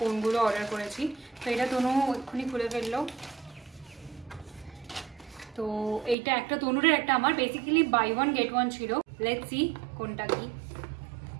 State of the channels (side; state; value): left; drops out; at 6.2 s